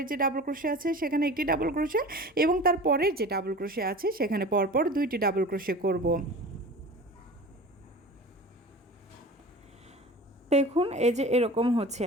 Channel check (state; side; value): normal; both; correlation 0.37